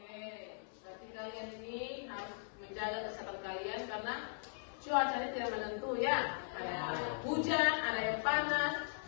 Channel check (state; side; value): silent; right; 52 dB below the other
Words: berarti kalian ini harus menjaga kesehatan kalian karena cuacanya tidak menentu ya. Ada hujan, ada yang panas.